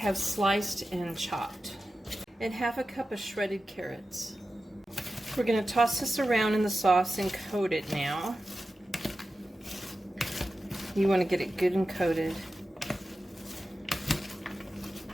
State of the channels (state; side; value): normal; both; correlation 0.93